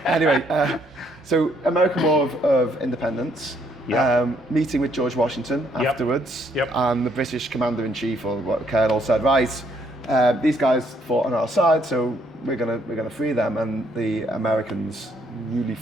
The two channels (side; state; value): both; normal; correlation 0.69